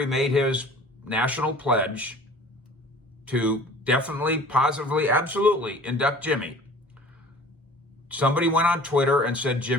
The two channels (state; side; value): normal; both; correlation 0.46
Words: made his national pledge to definitely, positively, absolutely induct Jimmy, somebody went on Twitter and said,